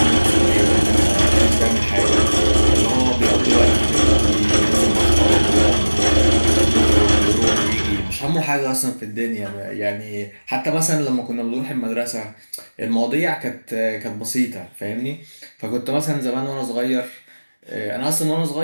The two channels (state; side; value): inverted; both; correlation -1.00